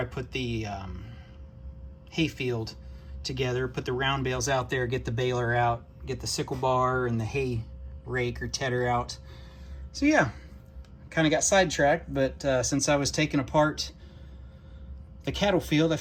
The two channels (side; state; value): both; identical; correlation 1.00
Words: put the hay field together, put the round bales out there, get the baler out, get the sickle bar and the hay rake or tedder out. So yeah, kind of got sidetracked, but since I was taking apart the cattle field, I